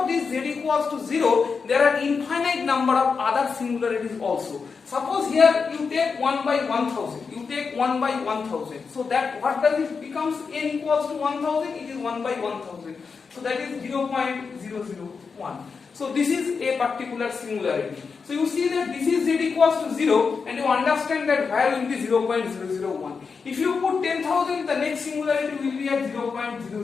this z equals to 0, there are infinite number of other singularities also. Suppose here you take 1 by 1000. You take 1 by 1000. So that what does it becomes? N equals to 1000. It is 1 by 1000. So that is 0.001. So this is a particular singularity. So you see that this is z equals to 0, and you understand that value will be 0.001. If you put 10,000, the next singularity will be at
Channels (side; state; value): right; quieter; 5.2 dB